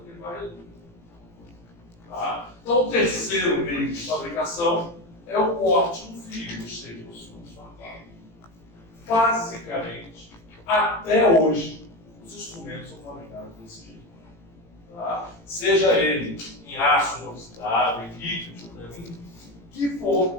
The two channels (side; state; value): right; late; 18 ms